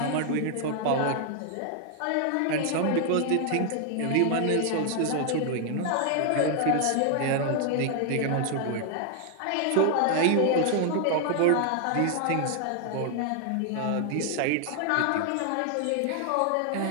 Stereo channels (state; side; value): different; both; correlation 0.00